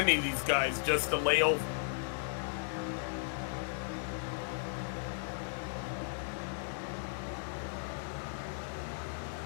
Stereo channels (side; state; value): right; silent; digital silence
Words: of these guys just to lay over.